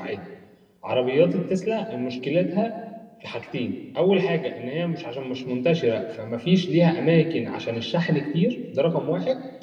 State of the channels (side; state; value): both; identical; correlation 1.00